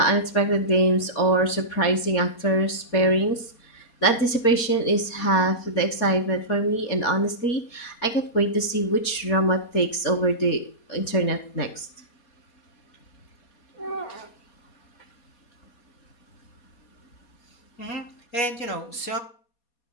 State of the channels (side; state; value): right; late; 4.2 ms